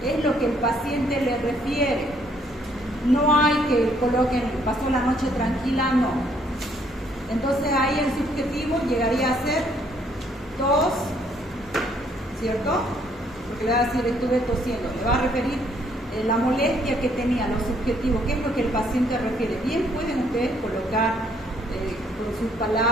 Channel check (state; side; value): normal; both; correlation 0.67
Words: es lo que el paciente le refiere. No hay que coloquen, pasó la noche tranquila, no. Entonces ahí el subjetivo llegaría a ser tos, ¿cierto? Porque le va a decir estuve tosiendo, le va a referir la molestia que tenía, lo subjetivo, qué es lo que el paciente refiere. Bien pueden ustedes colocar con sus